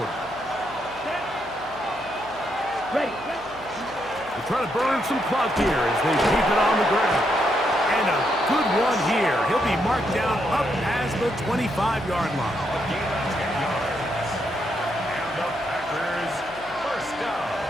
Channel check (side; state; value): right; noise; hum, 22 dB below the sound